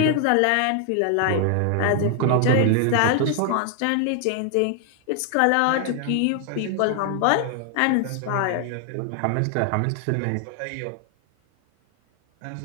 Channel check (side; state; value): both; different; correlation 0.00